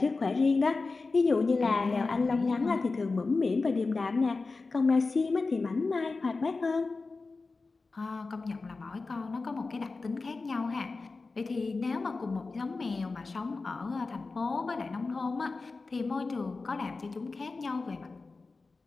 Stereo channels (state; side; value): quieter; right; 3.9 dB